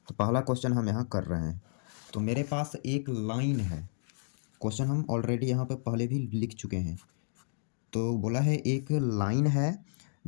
तो पहला क्वेश्चन हम यहाँ कर रहे हैं। तो मेरे पास एक लाइन है, क्वेश्चन हम ऑलरेडी यहाँ पे पहले भी लिख चुके हैं। तो बोला है एक लाइन है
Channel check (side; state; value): right; silent; digital silence